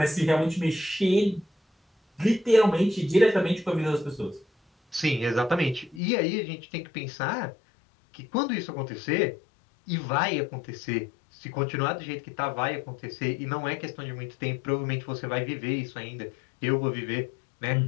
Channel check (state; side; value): drops out; right; at 6.0 s